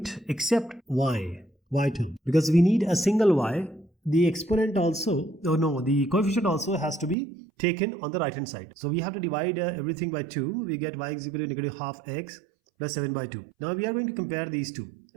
except y term, because we need a single y. The exponent also, the coefficient also has to be taken on the right hand side. So we have to divide everything by 2. We get y is equal to negative half x plus 7 by 2. Now we are going to compare these two.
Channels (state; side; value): drops out; left; at 7.2 s